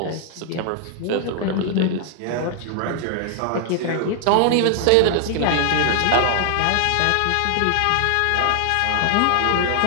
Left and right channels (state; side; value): different; both; correlation 0.00